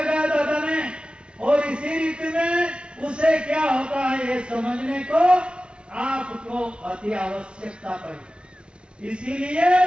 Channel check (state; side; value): late; left; 0.057 ms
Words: गया दादा ने। और इसी रीति में उसे क्या होता है ये समझने को आपको अति आवश्यकता पड़ी। इसीलिए